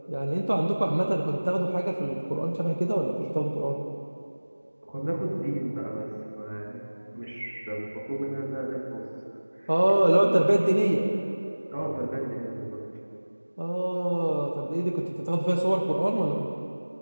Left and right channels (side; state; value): both; inverted; correlation -1.00